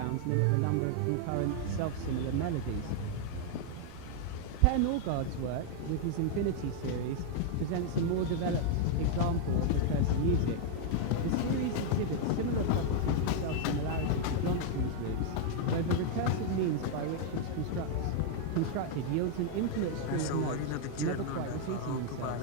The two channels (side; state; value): both; different; correlation 0.00